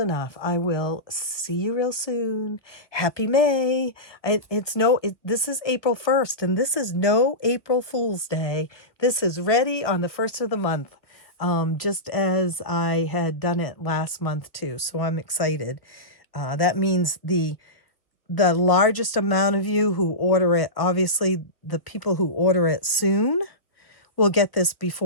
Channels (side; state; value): right; late; 1.3 ms